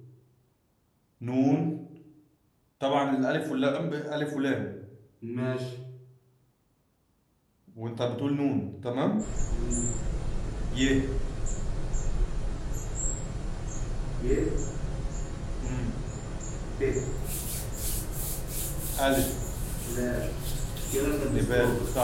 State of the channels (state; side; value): identical; both; correlation 1.00